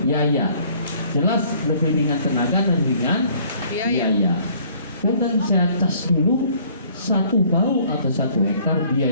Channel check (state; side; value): inverted; both; correlation -0.58